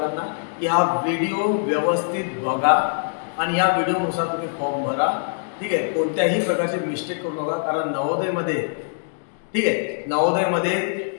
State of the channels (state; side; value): silent; right; digital silence